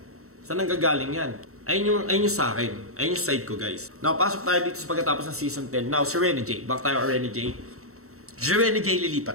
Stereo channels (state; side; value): late; left; 0.64 ms